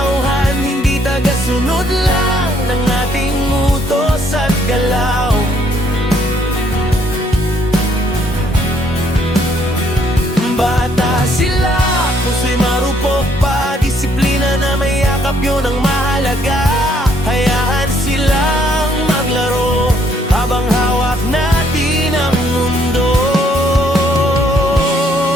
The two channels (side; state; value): both; normal; correlation 0.68